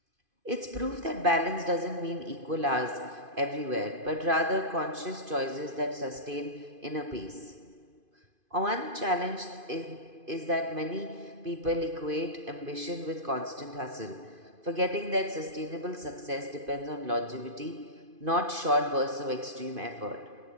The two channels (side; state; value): left; late; 2.5 ms